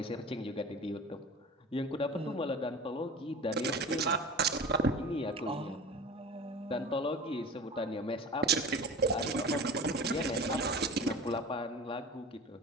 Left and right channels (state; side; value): normal; both; correlation 0.36